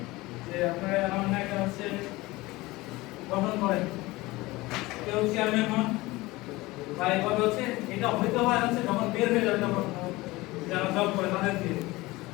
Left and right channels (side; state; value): right; quieter; 20.5 dB